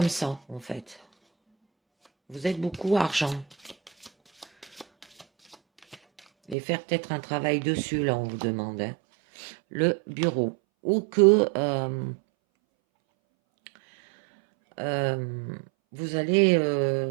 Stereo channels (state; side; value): drops out; left; at 6.6 s